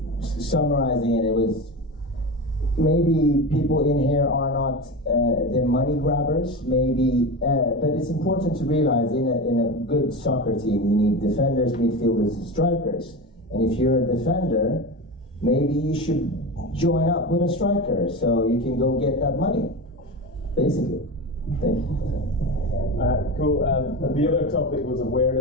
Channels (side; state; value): both; normal; correlation 0.24